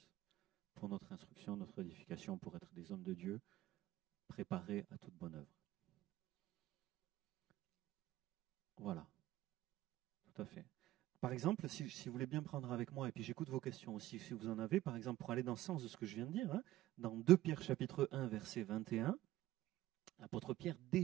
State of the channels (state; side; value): quieter; left; 15.2 dB